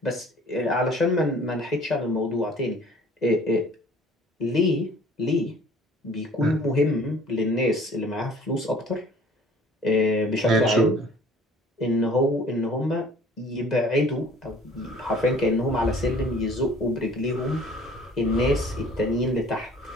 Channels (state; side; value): normal; both; correlation 0.52